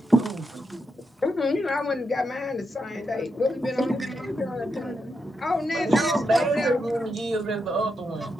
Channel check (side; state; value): both; normal; correlation 0.84